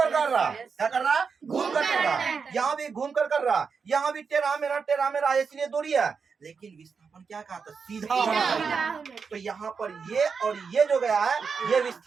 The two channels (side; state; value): left; quieter; 5.6 dB